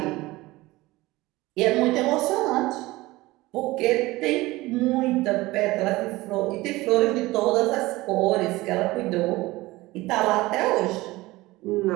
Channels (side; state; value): left; quieter; 19.7 dB